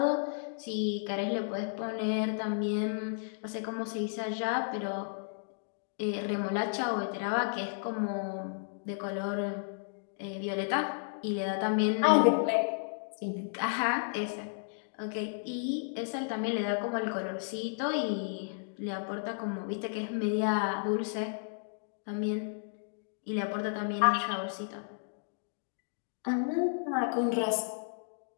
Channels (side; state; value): right; silent; digital silence